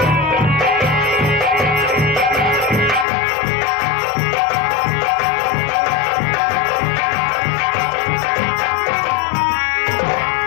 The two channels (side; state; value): right; drops out; at 3.1 s